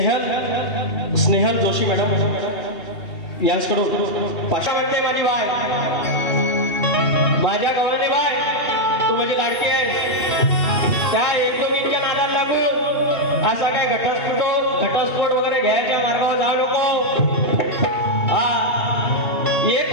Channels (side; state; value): right; late; 2.8 ms